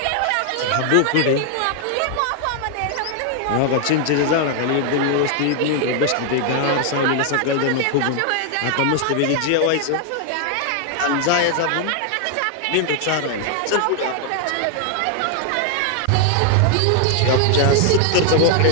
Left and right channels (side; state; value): both; different; correlation 0.00